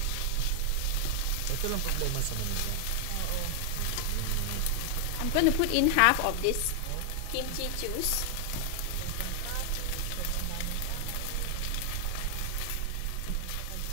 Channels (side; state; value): both; different; correlation 0.00